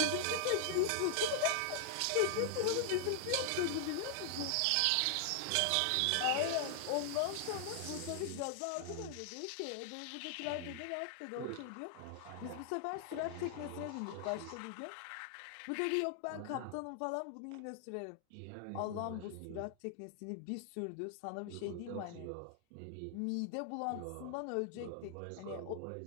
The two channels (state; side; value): different; both; correlation 0.00